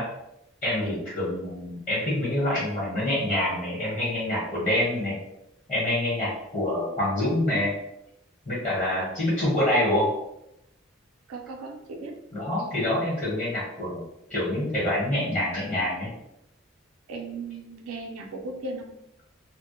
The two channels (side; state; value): both; normal; correlation 0.36